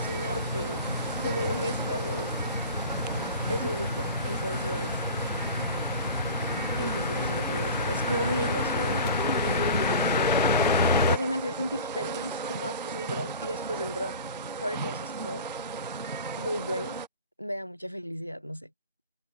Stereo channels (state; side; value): inverted; both; correlation -0.38